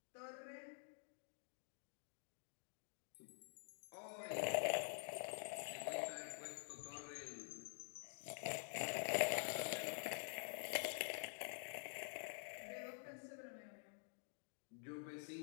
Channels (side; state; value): right; silent; digital silence